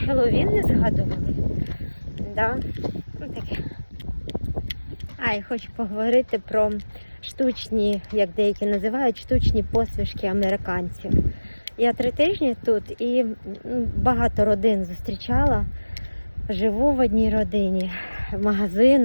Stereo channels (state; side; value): inverted; both; correlation -1.00